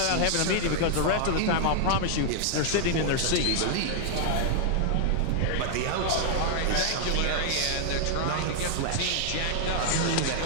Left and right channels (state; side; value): different; both; correlation -0.01